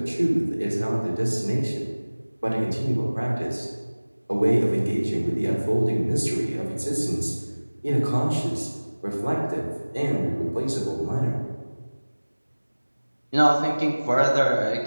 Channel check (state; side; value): inverted; both; correlation -1.00